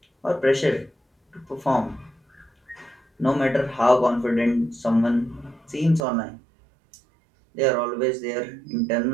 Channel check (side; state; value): left; drops out; at 6.0 s